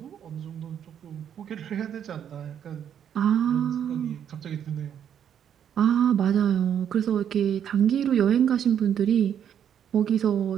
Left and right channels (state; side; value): quieter; left; 9.0 dB